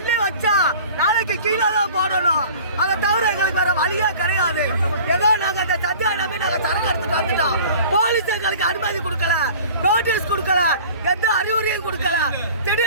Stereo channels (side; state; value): both; inverted; correlation -0.44